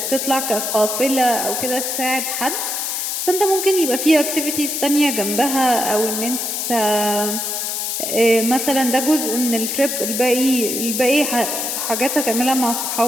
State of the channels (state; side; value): noise; left; hiss, 2 dB below the sound